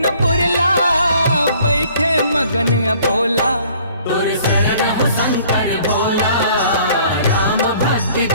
पुरला, बैठे मगन अबोला। तुर शरण हो शंकर भोला, राम भक्ति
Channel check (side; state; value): both; inverted; correlation -0.56